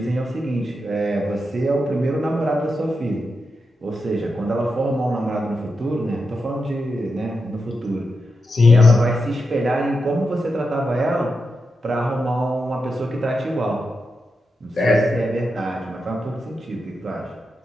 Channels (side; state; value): both; normal; correlation 0.87